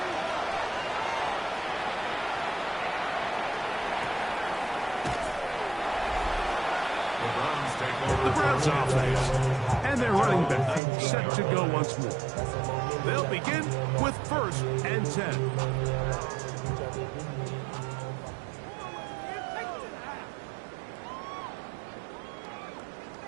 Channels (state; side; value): drops out; left; at 10.8 s